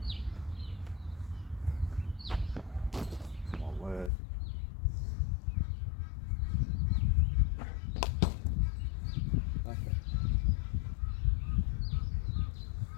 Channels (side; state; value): right; drops out; at 4.1 s